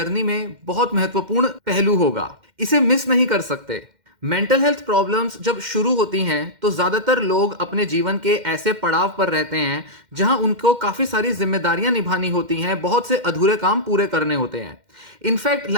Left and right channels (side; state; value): left; late; 2.1 ms